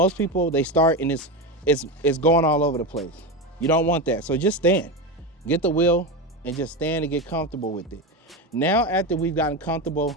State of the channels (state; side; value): normal; both; correlation 0.18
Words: people, they start and it's going all over the place. You don't want that. So just stand, get the wheel and just stand and get comfortable with it. Now, after we've gotten comfortable